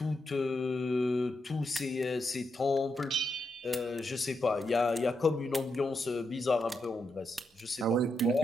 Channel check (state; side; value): normal; both; correlation 0.83